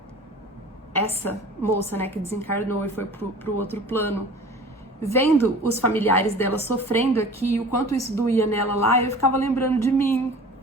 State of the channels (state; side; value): normal; both; correlation 0.42